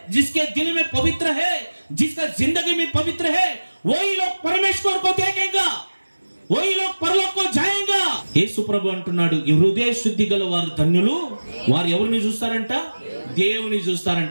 जिसके दिल में पवित्र है, जिसका जिंदगी में पवित्र है, वही लोग परमेश्वर को देखेंगा, वही लोग परलोक को जाएंगा. యేసు ప్రభు అంటున్నాడు, ఈ హృదయ శుద్ధి గల వారు ధన్యులు, వారు ఎవరిని చూస్తారంట? దేవుని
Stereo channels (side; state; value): both; inverted; correlation -1.00